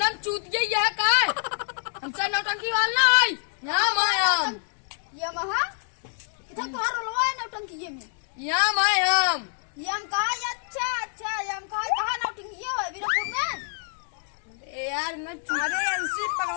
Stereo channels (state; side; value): silent; right; 58 dB below the other